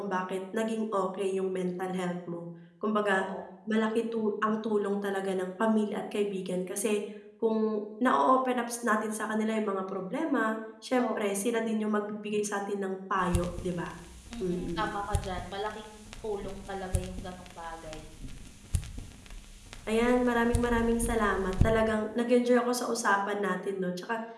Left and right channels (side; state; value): both; identical; correlation 1.00